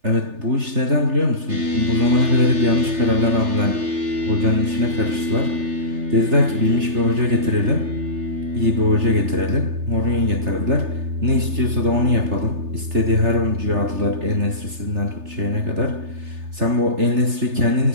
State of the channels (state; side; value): late; left; 3.3 ms